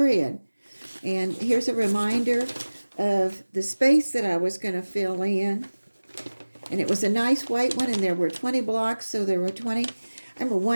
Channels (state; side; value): inverted; both; correlation -1.00